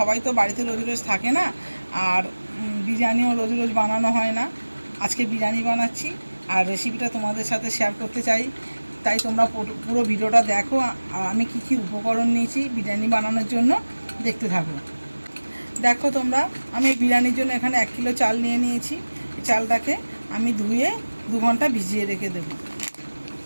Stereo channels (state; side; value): inverted; both; correlation -1.00